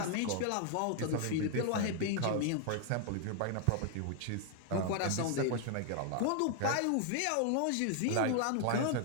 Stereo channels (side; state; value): both; different; correlation 0.00